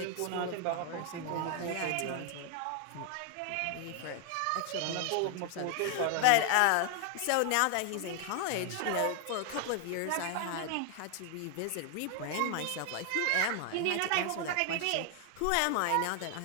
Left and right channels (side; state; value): both; different; correlation 0.00